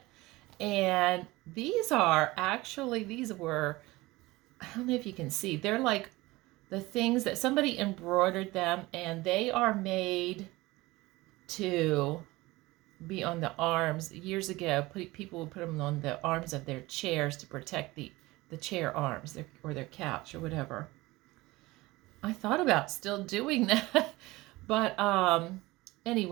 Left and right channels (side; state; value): left; quieter; 20.4 dB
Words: And these were, I don't know if you can see, they're like the things that somebody embroidered them, and they are made to be on the arms. Years ago, people would put them on the arms of their chairs to protect the chair arms or their couch or whatever. I thought about still doing that, but